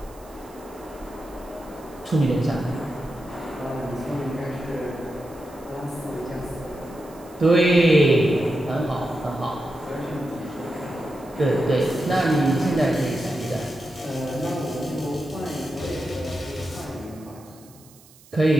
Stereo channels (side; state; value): right; noise; hiss, 25 dB below the sound